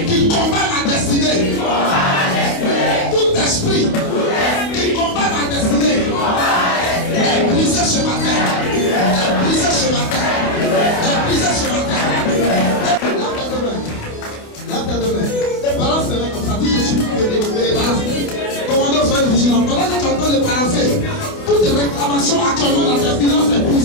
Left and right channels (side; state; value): right; late; 28 ms